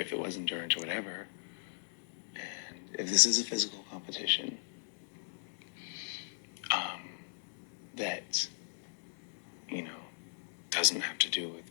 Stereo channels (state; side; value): silent; right; digital silence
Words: it wasn't endurance or whatever, and if this is a physical competition, that, you know, doesn't have to do